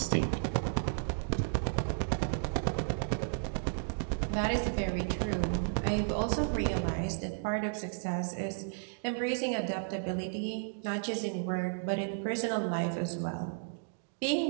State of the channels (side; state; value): left; silent; digital silence